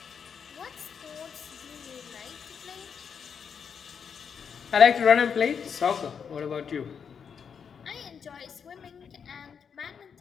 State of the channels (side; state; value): right; quieter; 6.8 dB